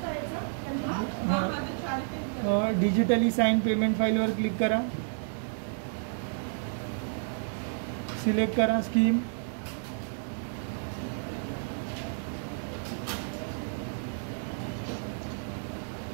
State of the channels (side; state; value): left; silent; digital silence